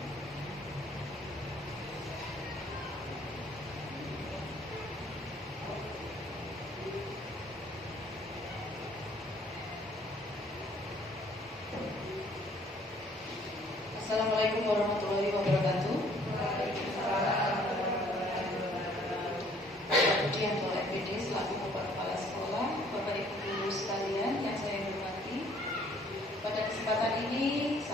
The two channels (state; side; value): normal; both; correlation 0.60